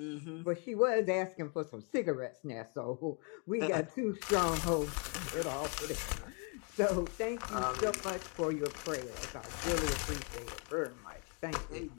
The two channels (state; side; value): quieter; right; 36.1 dB